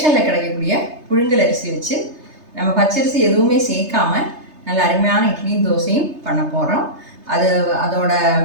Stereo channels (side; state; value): left; late; 3.3 ms